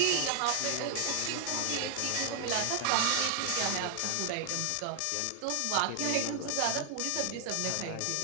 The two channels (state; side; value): different; both; correlation 0.00